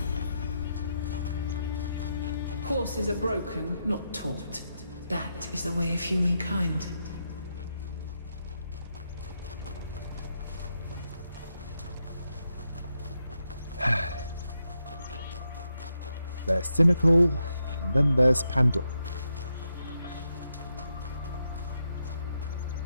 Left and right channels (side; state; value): both; inverted; correlation -0.83